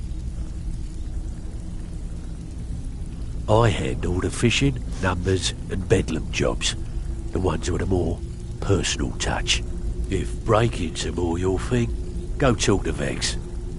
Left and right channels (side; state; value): both; identical; correlation 1.00